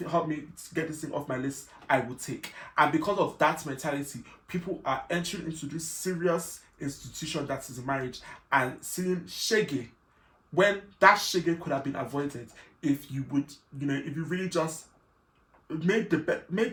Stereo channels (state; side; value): identical; both; correlation 1.00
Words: help me get this thing off my list, I will take. And because of that mentality, people are entering into this serious institution that is marriage and seeing shege, when that shege could have been avoided if you would, if you really just made